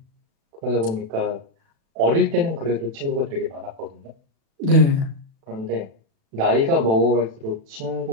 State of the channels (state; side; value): late; left; 36 ms